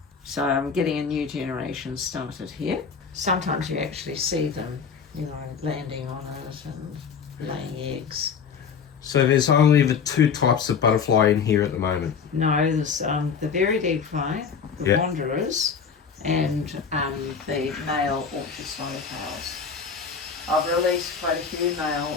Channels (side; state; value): right; quieter; 6.2 dB